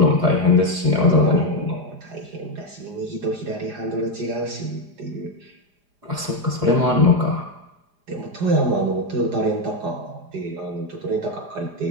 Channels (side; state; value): left; late; 4.9 ms